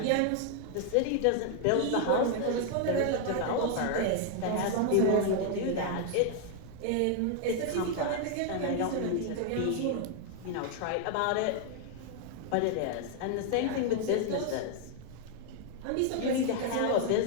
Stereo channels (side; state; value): both; different; correlation 0.00